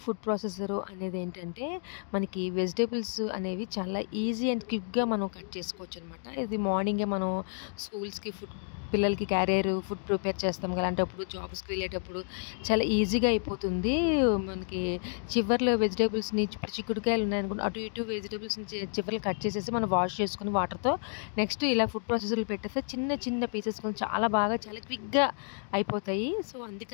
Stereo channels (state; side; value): silent; right; 57 dB below the other